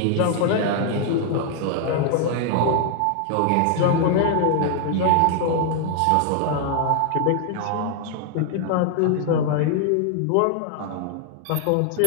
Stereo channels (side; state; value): both; different; correlation 0.00